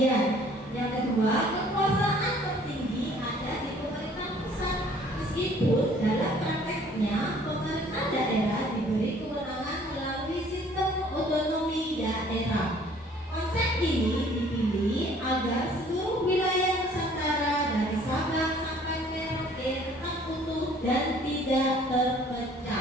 Yang kedua, kekuasaan tertinggi ada di pemerintah pusat, meskipun dalam prakteknya pemerintah daerah diberi kewenangan melalui sistem otonomi daerah. Konsep ini dipilih agar seluruh wilayah Nusantara dari Sabang sampai Merauke tetap utuh dan tidak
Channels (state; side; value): normal; both; correlation 0.56